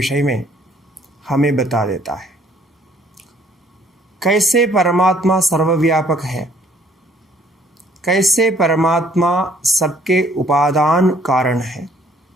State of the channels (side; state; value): both; normal; correlation 0.61